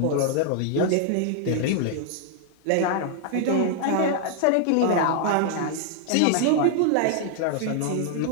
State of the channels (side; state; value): both; different; correlation 0.00